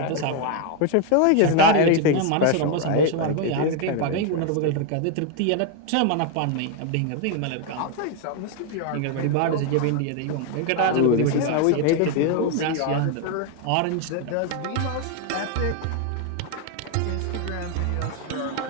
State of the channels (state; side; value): different; both; correlation 0.01